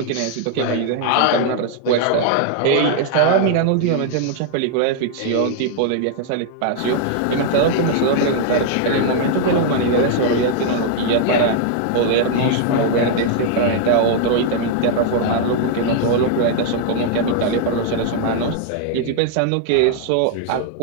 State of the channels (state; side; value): different; both; correlation 0.00